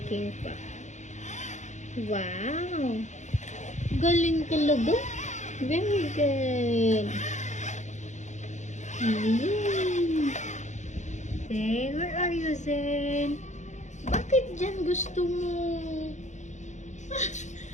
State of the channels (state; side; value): late; right; 0.34 ms